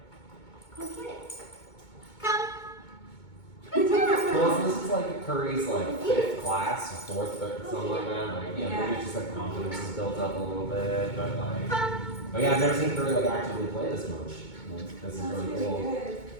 Go get it. Come. Well, this is like Curry's like 5th class, 4th, something like that. Like, yeah, maybe it's just like confidence is built up a little bit, but like, oh yeah, I've never seen Curry like actively play this much. Like, this is really cool. Good.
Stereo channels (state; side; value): late; right; 2.2 ms